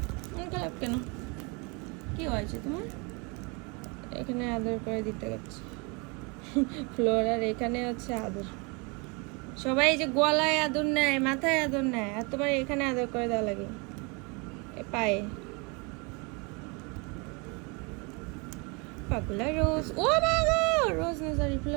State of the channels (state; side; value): quieter; left; 30.5 dB